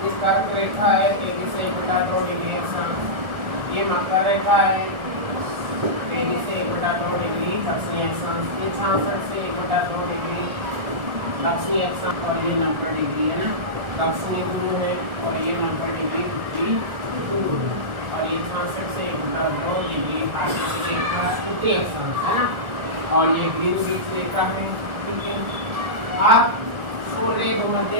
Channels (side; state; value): left; late; 1.4 ms